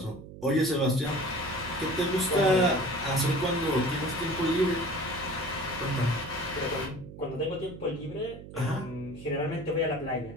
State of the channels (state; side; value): noise; right; hum, 14 dB below the sound